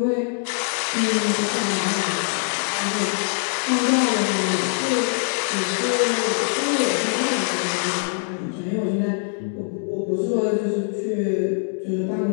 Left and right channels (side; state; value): right; silent; 63 dB below the other